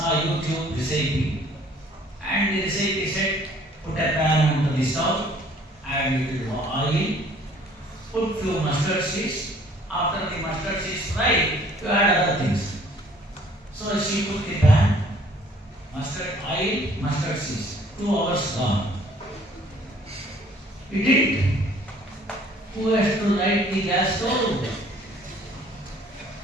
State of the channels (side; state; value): both; normal; correlation 0.57